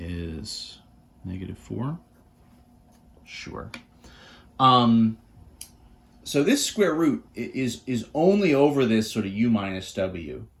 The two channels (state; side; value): identical; both; correlation 1.00